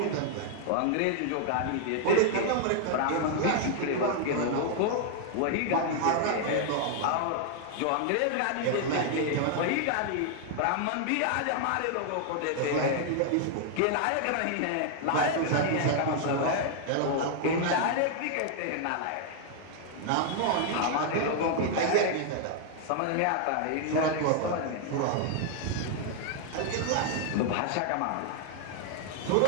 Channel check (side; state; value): both; different; correlation 0.00